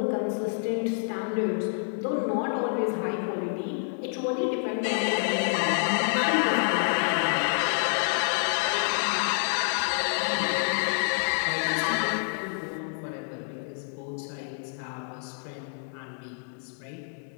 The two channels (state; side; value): silent; right; digital silence